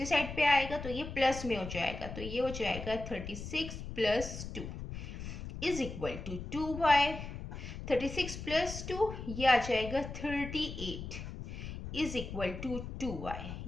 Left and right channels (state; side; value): noise; left; rumble, 8 dB below the sound